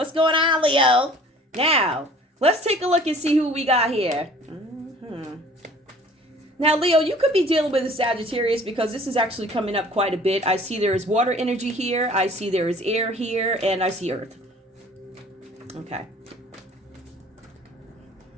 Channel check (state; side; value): normal; both; correlation 0.51